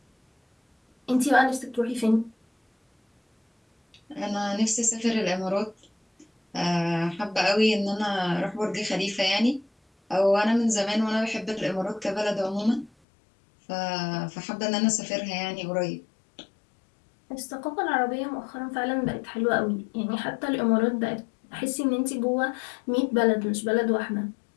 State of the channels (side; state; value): right; drops out; at 12.9 s